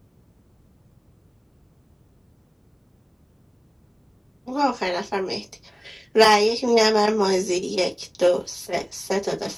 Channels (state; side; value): identical; both; correlation 1.00